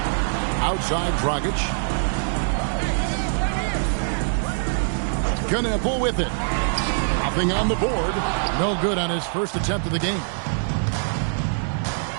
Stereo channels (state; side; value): silent; left; digital silence